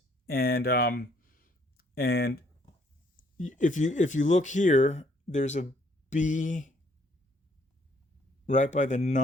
and if you look here, there's a B right by the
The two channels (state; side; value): normal; both; correlation 0.66